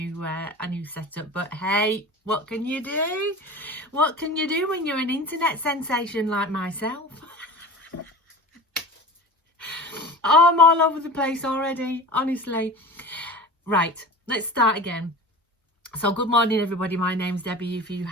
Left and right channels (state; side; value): normal; both; correlation 0.35